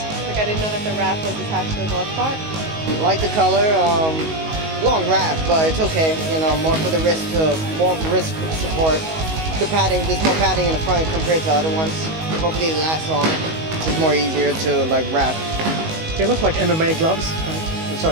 Like, I didn't know that the wrap was attached to the glove part. Like the color, long wrap, but it's okay. You know, more for the wrist support. The padding, there's more padding in the front compared to other ones. Hopefully it lasts long. It's more easier to like wrap. They look like MMA gloves, so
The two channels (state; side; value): late; left; 19 ms